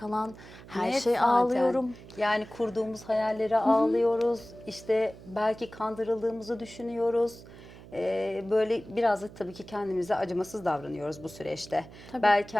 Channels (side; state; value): right; noise; hum, 18 dB below the sound